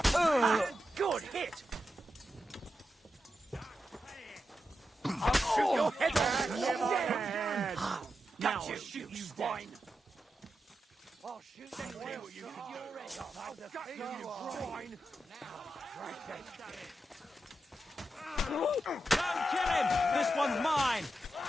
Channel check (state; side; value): normal; both; correlation 0.88